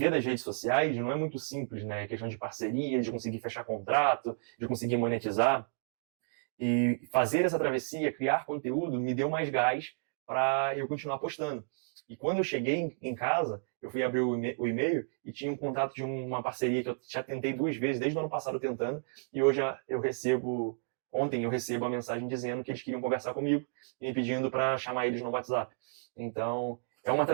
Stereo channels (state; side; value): silent; left; digital silence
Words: das redes sociais não é muito simples, né? Questão de parceria, de conseguir fechar contrato, de conseguir monetizar. E fazer essa travessia, criar conteúdo, me deu mais gás para eu continuar postando. E quando eu cheguei em casa, eu fui abrir o e-mail e tinha um contato de uma parceria que eu já tentei 2 vezes, desde o ano passado tentando, e hoje ontem eu recebo a mensagem dizendo que eles queriam conversar comigo e me pedindo para chamar eles no WhatsApp. Então, é uma